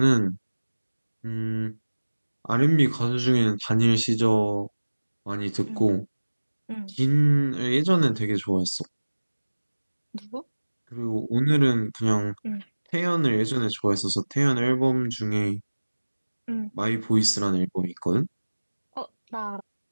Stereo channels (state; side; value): inverted; both; correlation -1.00